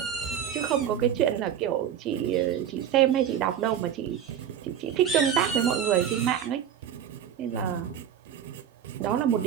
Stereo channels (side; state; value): left; quieter; 9.3 dB